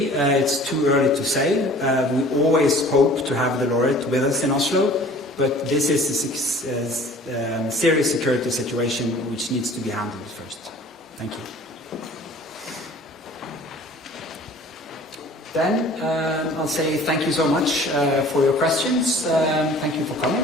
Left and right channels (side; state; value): both; normal; correlation 0.48